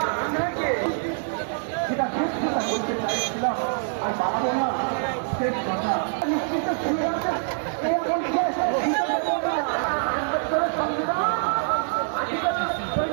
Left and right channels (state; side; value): silent; left; digital silence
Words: আমরা কে যেটা শেষ কথা বলতে চাইছিলাম আর বাবা না শেষ কথা নিশ্চিত শুনে আছে এই এখন শেষ আম্বেদকরের সংবিধান আর্টিকেল